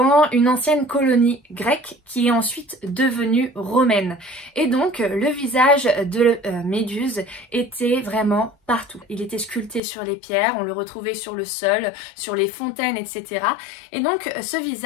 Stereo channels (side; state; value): right; drops out; at 9.8 s